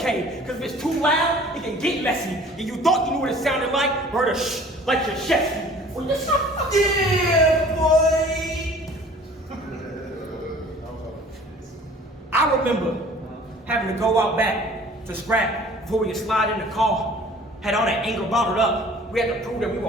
cause if it's too loud, it can get messy. And you thought you knew what it sounded like, heard a shh, like your chest. Yeah, boy! I remember having to go out back to scrap before we could slide in the car. Had all that anger bottled up. We had to prove that we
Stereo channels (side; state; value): both; normal; correlation 0.49